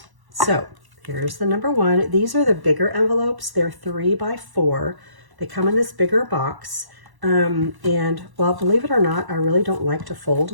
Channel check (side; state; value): left; late; 1.1 ms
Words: So here's the number 1. These are the bigger envelopes. They're 3 by 4. They come in this bigger box. And well, believe it or not, I really don't like to fold